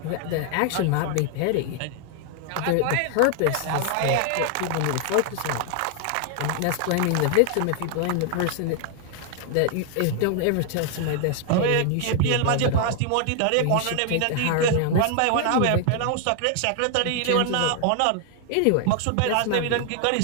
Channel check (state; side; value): different; both; correlation 0.00